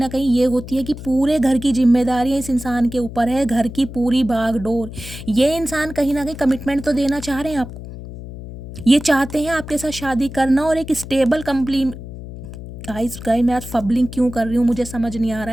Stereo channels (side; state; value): left; noise; hum, 12 dB below the sound